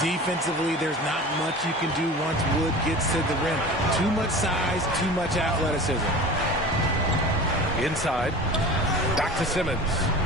there's not much you can do once Wood gets to the rim. Too much size, too much athleticism. Inside. Back to Simmons.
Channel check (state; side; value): normal; both; correlation 0.36